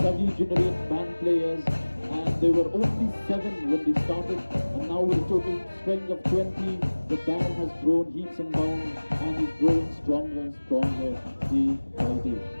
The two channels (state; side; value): inverted; both; correlation -1.00